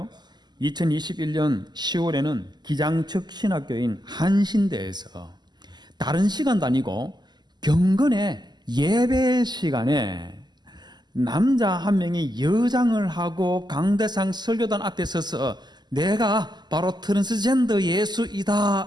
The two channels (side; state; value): left; late; 0.21 ms